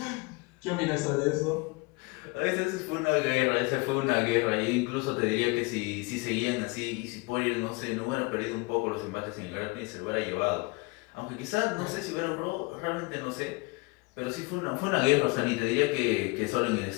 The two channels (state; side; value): quieter; right; 26.4 dB